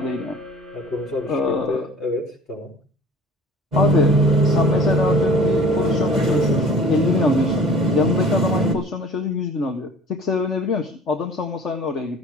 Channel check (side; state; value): both; normal; correlation 0.46